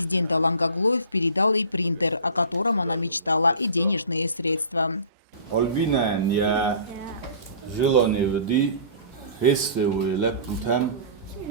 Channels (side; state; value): both; inverted; correlation -0.41